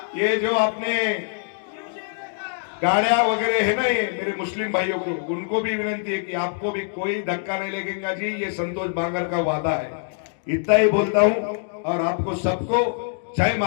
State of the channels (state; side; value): silent; right; digital silence